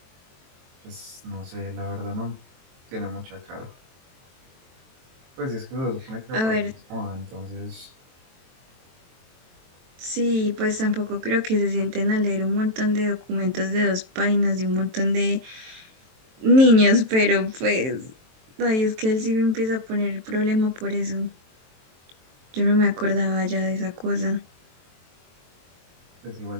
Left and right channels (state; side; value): late; left; 23 ms